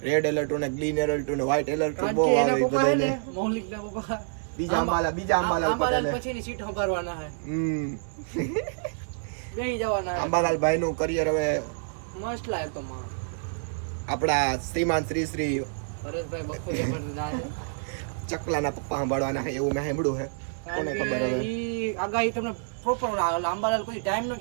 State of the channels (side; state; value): left; silent; 60 dB below the other